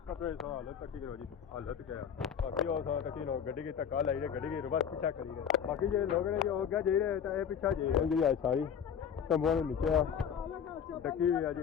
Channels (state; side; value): quieter; right; 8.0 dB